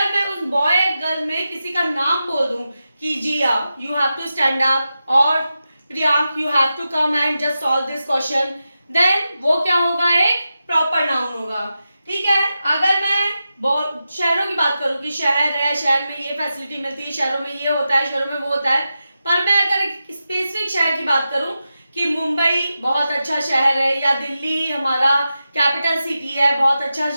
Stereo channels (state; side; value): inverted; both; correlation -0.91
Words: मैं उस बॉय एंड गर्ल में किसी का नाम बोल दूं कि Jiya you have to stand up, और Priyank you have to come and just solve this question, then वो क्या होगा? एक प्रॉपर नाउन होगा। ठीक है, अगर मैं शहरों की बात करूं कि शहर है, शहर में ये फैसिलिटी मिलती है, शहरों में ये होता है, शहरों में वो होता है, पर मैं अगर एक स्पेसिफिक शहर की बात करूं कि मुंबई बहुत अच्छा शहर है, या दिल्ली हमारा कैपिटल सिटी है, बहुत अच्छा